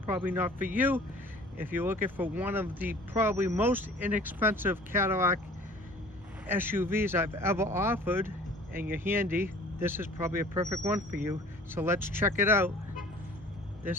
not for you. If you're looking for one of the probably most inexpensive Cadillac SUVs I've ever offered, and you're handy, this is probably a perfect one for you. So let's check it out.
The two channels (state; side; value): normal; both; correlation 0.49